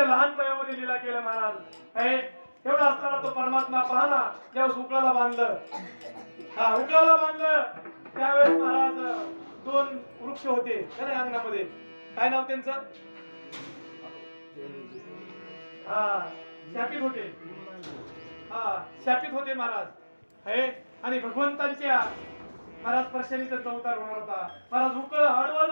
लहान वयामध्ये लीला केल्या महाराज एवढा असताना तो परमात्मा पाहला ज्यावेळेस उकळाला बांधलं त्यावेळेस महाराज दोन वृक्ष होते अंगणामध्ये काय नाव त्यांचं शापित होते महाराज आणि भगवंतांच्या महाराज स्पर्शाने त्यांचा अवतार होणार होता महाराज उकळ आडवं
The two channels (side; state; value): both; inverted; correlation -1.00